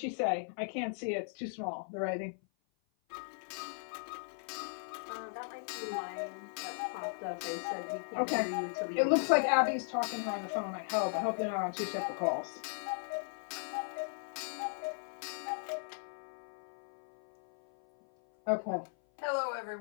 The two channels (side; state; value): right; silent; 53 dB below the other